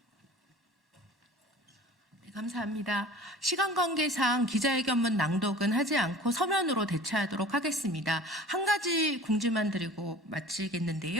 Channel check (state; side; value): normal; both; correlation 0.42